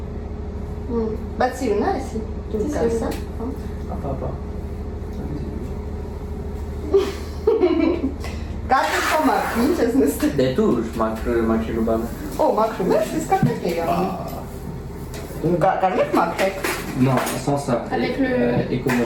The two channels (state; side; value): identical; both; correlation 1.00